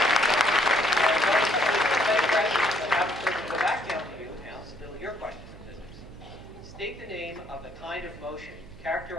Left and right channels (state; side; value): noise; right; hum, 19 dB below the sound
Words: Go back down to you now, still your question in physics. State the name of the kind of motion